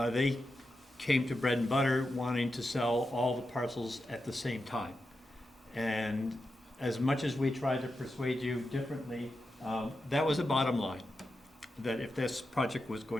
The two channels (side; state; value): both; normal; correlation 0.89